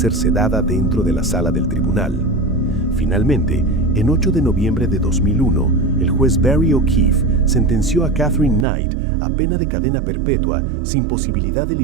sedada dentro de la sala del tribunal. Finalmente, en 8 de noviembre de 2001, el juez Barry O'Keefe sentenció a Catherine Knight a pena de cadena perpetua sin posibilidad de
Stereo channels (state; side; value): drops out; left; at 8.7 s